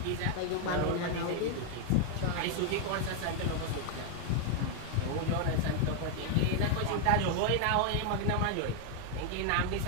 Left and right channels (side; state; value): both; different; correlation 0.00